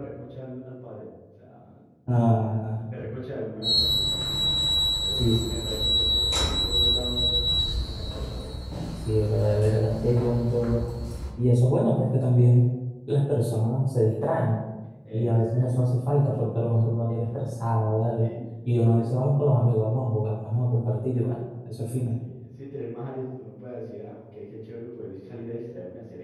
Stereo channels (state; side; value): identical; both; correlation 1.00